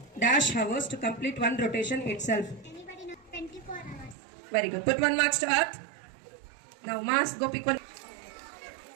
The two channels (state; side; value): drops out; left; at 4.2 s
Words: dash hours to complete one rotation itself. Anybody know? 24 hours. Very good. Put 1 marks to Earth. Now, Mars. Go pick one.